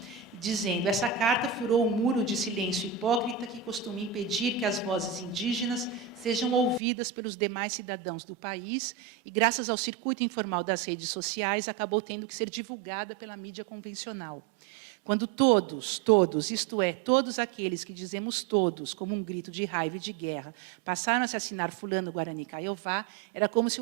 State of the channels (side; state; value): left; drops out; at 6.8 s